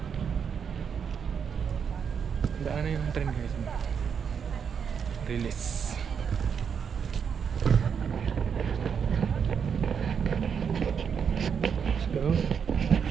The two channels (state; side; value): quieter; left; 7.0 dB